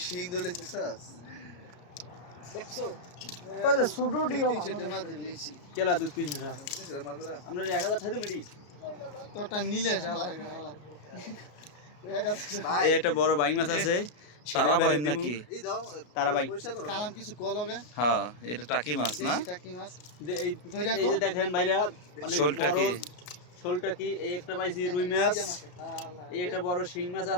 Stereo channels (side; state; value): right; late; 33 ms